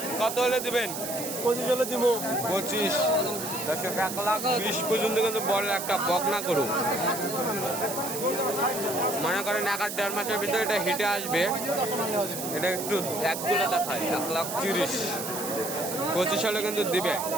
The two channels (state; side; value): noise; right; hiss, 6 dB below the sound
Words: কত হলে দিবেন? 25 হলে দিব। 25। দর্শক 1,20,000 পর্যন্ত কিন্তু বড় একটা বকনা করু। মনে করেন 1 আর 1.5 মাসের ভিতরে এটা হিটে আসবে। এটা একটু এক করে দেখায়। 1,30,000 25 হলে কিন্তু দিবে।